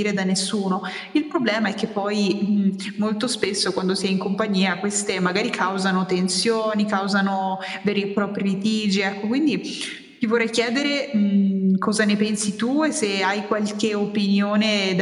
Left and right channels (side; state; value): both; identical; correlation 1.00